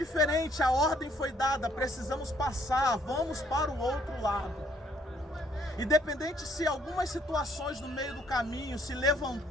a ordem foi dada, precisamos passar, vamos para o outro lado. Independente se algumas situações no meio do caminho se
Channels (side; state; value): both; normal; correlation 0.66